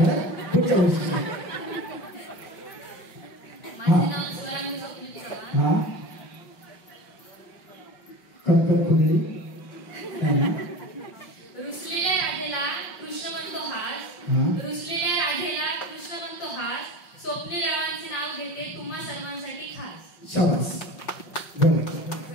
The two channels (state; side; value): late; right; 5.5 ms